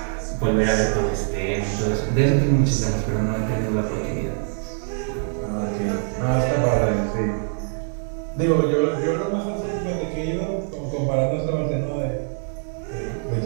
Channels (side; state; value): left; silent; 60 dB below the other